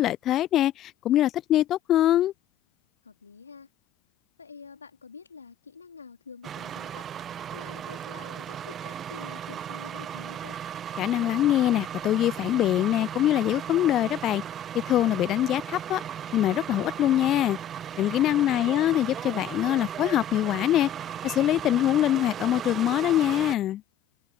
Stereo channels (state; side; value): quieter; right; 9.5 dB